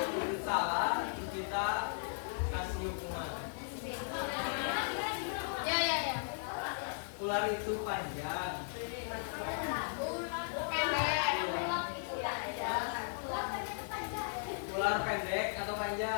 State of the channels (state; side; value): silent; right; 53 dB below the other